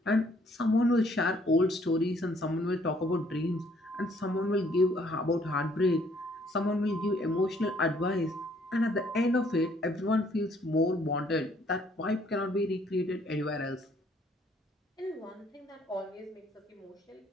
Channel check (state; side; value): normal; both; correlation 0.64